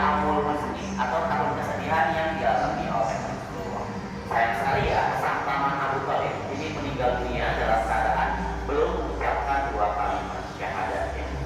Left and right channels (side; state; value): both; identical; correlation 1.00